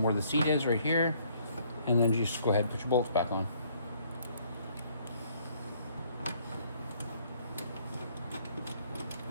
where the seat is right here, and then just go ahead and put your bolts back on.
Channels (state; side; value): inverted; both; correlation -0.65